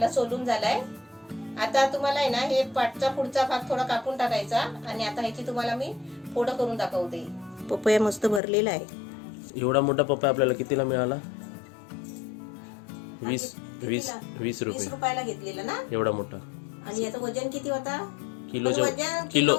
सोलून झालाय. आता तुम्हाला आहे ना हे पाटचा पुढचा भाग थोडा कापून टाकायचा आणि आता ह्याची तुम्हाला मी फोडं करून दाखवते. पपया मस्त भरलेला आहे. एवढा मोठा पपया आपल्याला कितीला मिळाला? 20 रुपयाला घेतलेला ना एवढा मोठा. आणि याचं वजन किती होता? किलो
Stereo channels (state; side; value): drops out; right; at 8.4 s